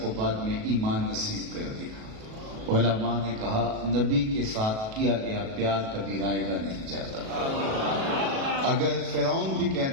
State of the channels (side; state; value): left; late; 37 ms